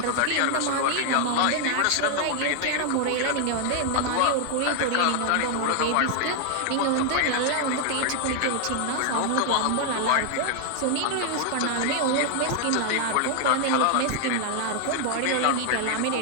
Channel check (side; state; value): both; different; correlation 0.00